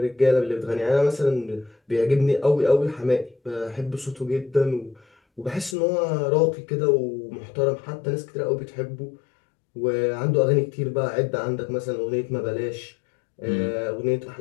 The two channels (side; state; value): right; drops out; at 5.8 s